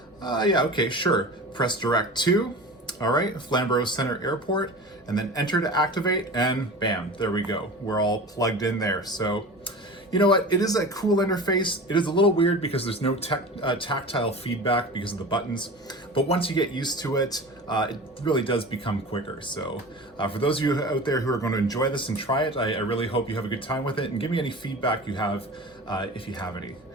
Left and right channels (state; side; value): normal; both; correlation 0.34